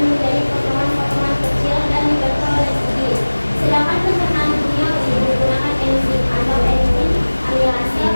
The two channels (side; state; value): both; inverted; correlation -1.00